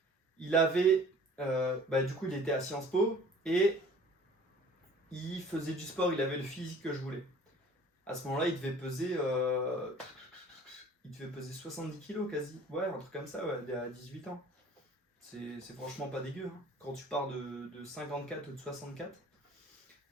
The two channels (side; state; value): both; normal; correlation 0.49